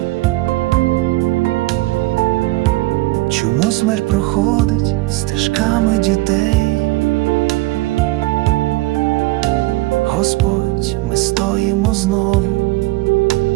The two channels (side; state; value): left; quieter; 19.9 dB